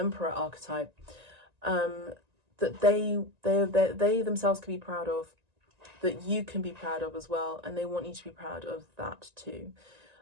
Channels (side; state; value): left; late; 1.9 ms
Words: that they themselves can be proud of, that you can be proud of as well, and they want you to be proud of that too.